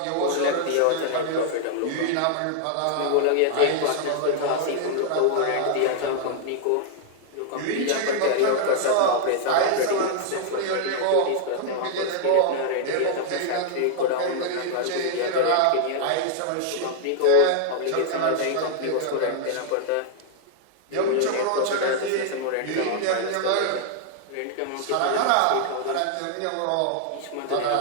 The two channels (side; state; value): both; different; correlation 0.00